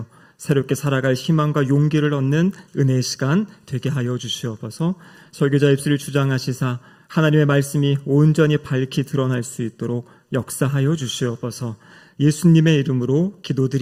새롭게 살아갈 희망과 용기를 얻는 은혜의 시간 되게 하여 주시옵소서. 설교자 입술을 주장하시사 하나님의 말씀이 온전히 밝히 드러날 수 있도록 역사하여 주시옵소서. 예수님의 이름으로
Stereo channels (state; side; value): identical; both; correlation 1.00